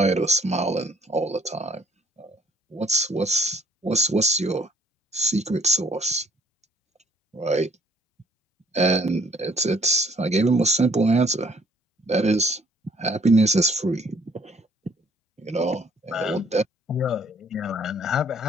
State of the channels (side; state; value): both; normal; correlation 0.61